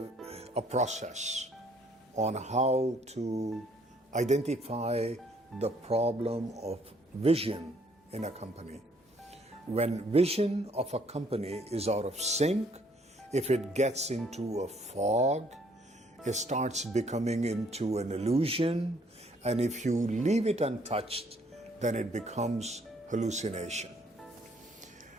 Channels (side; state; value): both; normal; correlation 0.64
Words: process on how to identify the problem of vision in a company. When vision of a company is out of sync, if it gets into a fog, it starts becoming into an illusion, and if you leave it untouched, then it becomes hallucination.